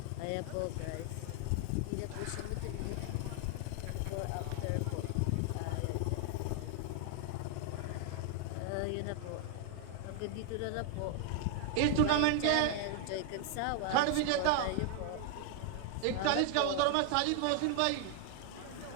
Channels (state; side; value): different; both; correlation 0.00